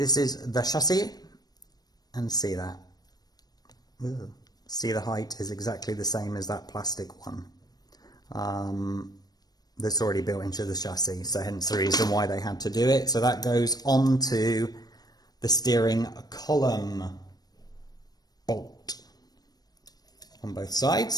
is the chassis, and see that. Ooh. See, the height is exactly the same as that plastic one that's already built into the chassis, so hence the reason why they had to do it. So that goes onto the steering column bolt on both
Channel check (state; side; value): late; right; 0.19 ms